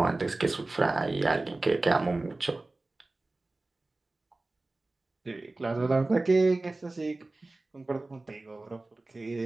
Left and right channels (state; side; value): quieter; left; 3.1 dB